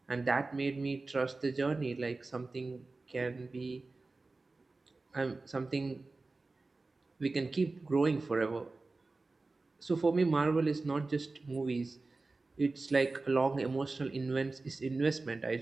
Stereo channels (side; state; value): left; quieter; 3.5 dB